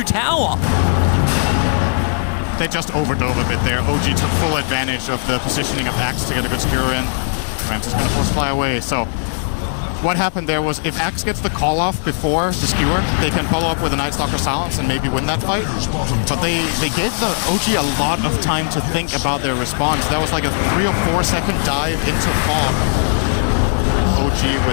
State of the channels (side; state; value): right; silent; 67 dB below the other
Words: tower. They just overdove a bit there. OG took full advantage of the positioning of Axe to get a good skewer in. Rams is going to force fly away. So what happened there was if Axe gets the call off before the skewer, they can follow up with a Night Stalker Silence and maybe win that fight. But they gave the OG a lot of time to think about their response. That was like a 3 or 4 second dive into fog. OG